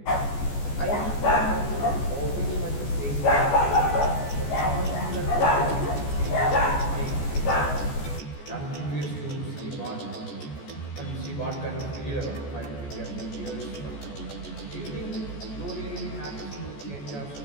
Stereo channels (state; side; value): late; right; 14 ms